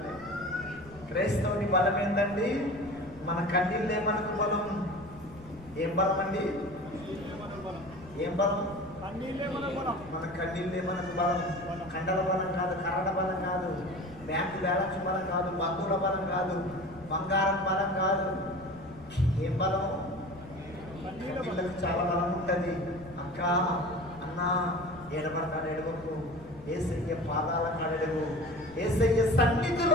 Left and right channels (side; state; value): left; noise; rumble, 20 dB below the sound